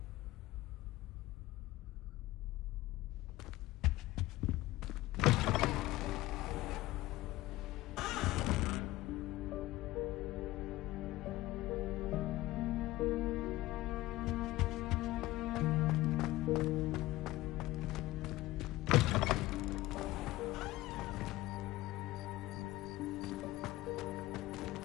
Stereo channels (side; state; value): right; quieter; 17.7 dB